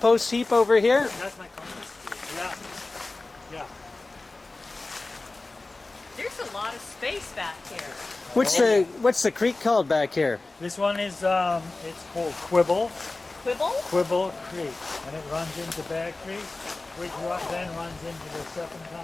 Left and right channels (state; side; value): quieter; right; 3.3 dB